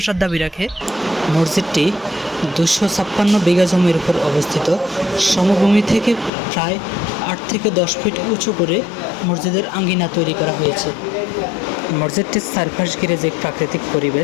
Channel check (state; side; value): drops out; right; at 6.3 s